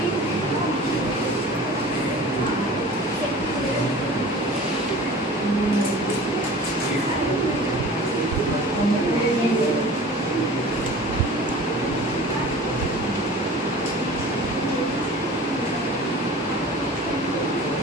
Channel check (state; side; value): normal; both; correlation 0.41